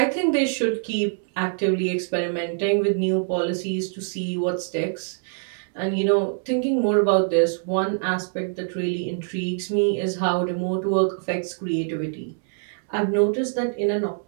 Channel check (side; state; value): left; silent; digital silence